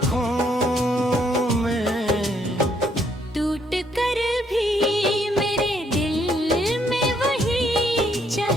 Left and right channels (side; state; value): both; normal; correlation 0.70